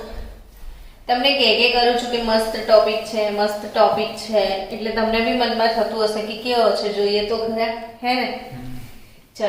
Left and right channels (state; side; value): identical; both; correlation 1.00